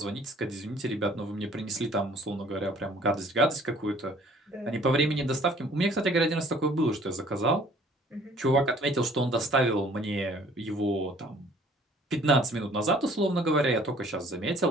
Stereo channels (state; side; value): normal; both; correlation 0.55